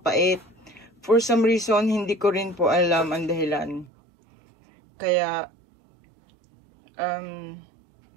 For some reason, hindi ko rin po alam ang dahilan. Kaya,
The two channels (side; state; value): left; drops out; at 3.9 s